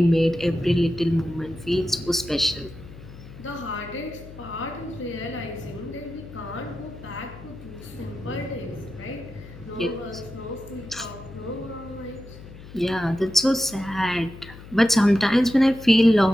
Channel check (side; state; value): left; noise; hum, 16 dB below the sound